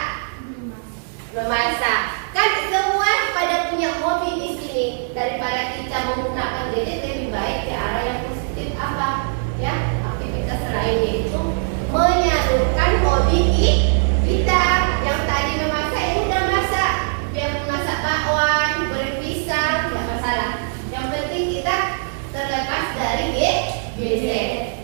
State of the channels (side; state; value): left; silent; 63 dB below the other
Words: kita menggunakan gadget lebih baik ke arah yang positif apa? Ya, aktivitas lain yaitu menyalurkan hobi kita. Yang tadi memasak ini udah masak, biar masak bakwan, goreng pisang, nggak masalah. Yang penting kita terlepas dari gadget.